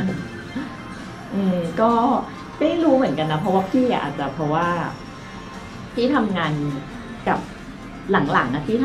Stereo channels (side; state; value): both; identical; correlation 1.00